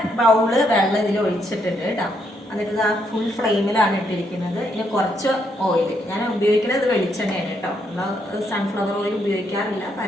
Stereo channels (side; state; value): both; normal; correlation 0.76